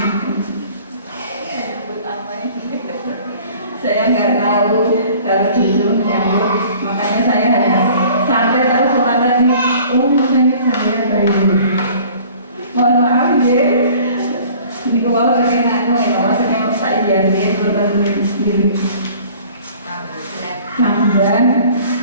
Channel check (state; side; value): inverted; both; correlation -0.50